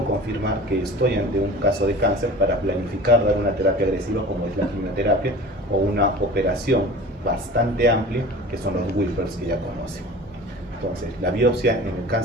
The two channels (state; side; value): normal; both; correlation 0.39